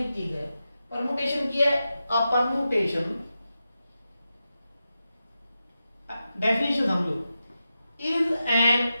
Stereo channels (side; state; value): both; inverted; correlation -0.90